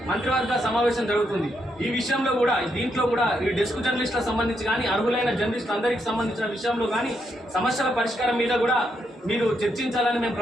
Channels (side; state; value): both; normal; correlation 0.79